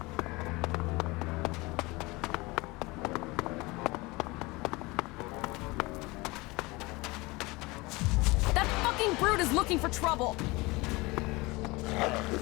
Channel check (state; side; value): quieter; right; 23.3 dB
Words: That fucking brute is looking for trouble.